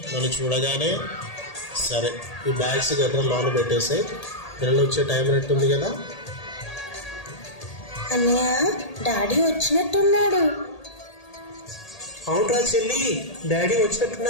నన్ను చూడగానే. సరే, ఈ బ్యాగ్స్ గట్రా లోన పెట్టేసి పిల్లలు వచ్చే టైం అయినట్టుంది కదా. అన్నయ్య, డాడీ వచ్చినట్టున్నాడు. అవునరా చెల్లి, డాడీ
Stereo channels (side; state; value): right; late; 1.8 ms